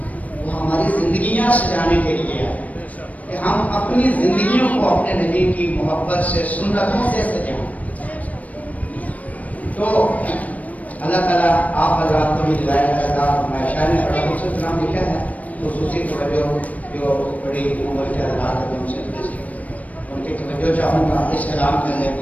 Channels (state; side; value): late; right; 0.070 ms